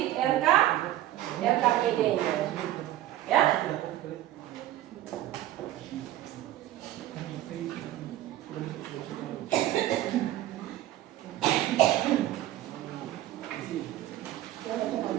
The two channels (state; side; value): quieter; left; 13.9 dB